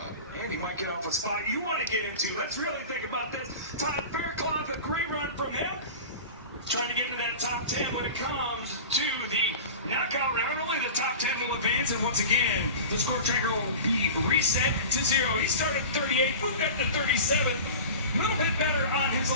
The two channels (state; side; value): inverted; both; correlation -0.33